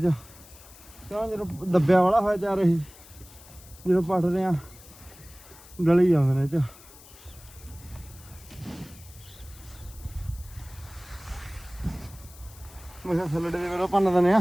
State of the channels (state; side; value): noise; left; hiss, 21 dB below the sound